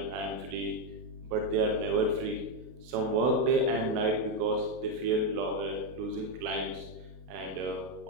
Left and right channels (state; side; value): late; left; 32 ms